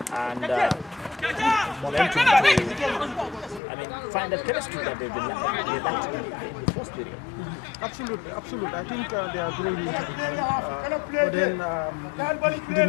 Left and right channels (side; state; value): right; drops out; at 3.6 s